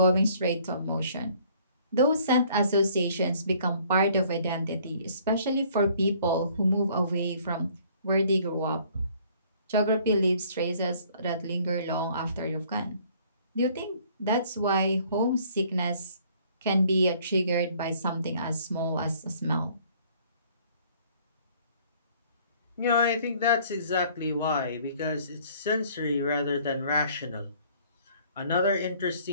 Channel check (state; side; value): inverted; both; correlation -0.58